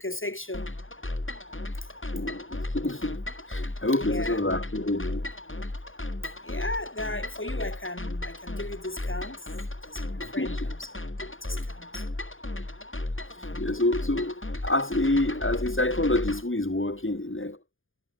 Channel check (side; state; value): right; late; 0.59 ms